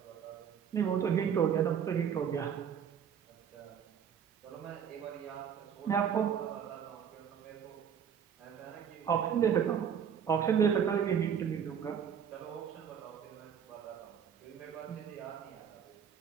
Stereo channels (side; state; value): left; quieter; 8.0 dB